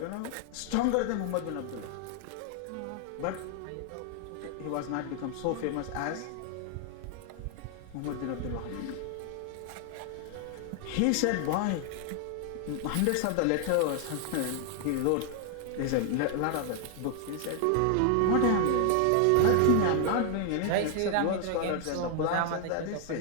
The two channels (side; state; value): both; different; correlation 0.00